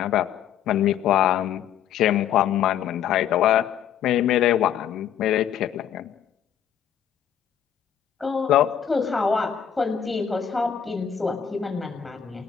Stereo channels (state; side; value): quieter; right; 9.2 dB